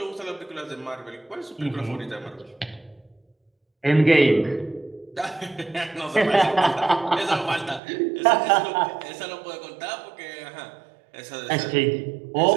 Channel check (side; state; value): left; drops out; at 7.8 s